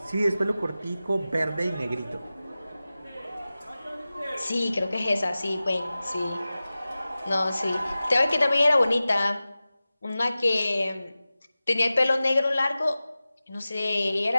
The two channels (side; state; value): both; inverted; correlation -0.96